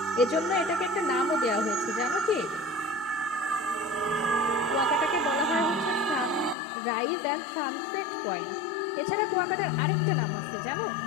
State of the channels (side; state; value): right; drops out; at 6.6 s